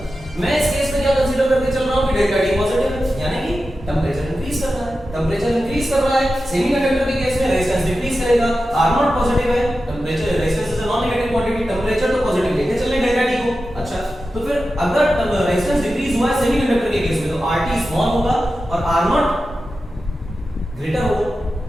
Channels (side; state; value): both; normal; correlation 0.92